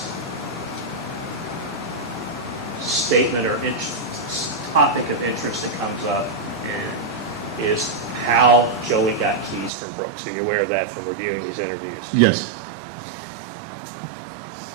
statement or topic of interest that comes up is how Joey got keys from Brooks. So you're aware of that from reviewing these interviews? Yes.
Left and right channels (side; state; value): left; drops out; at 9.7 s